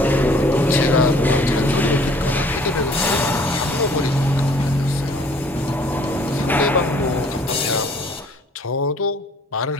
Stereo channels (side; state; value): both; normal; correlation 0.56